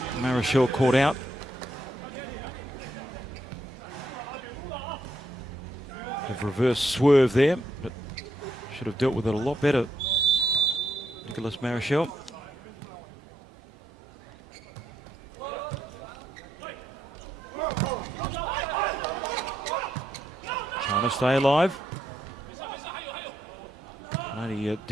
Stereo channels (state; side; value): normal; both; correlation 0.78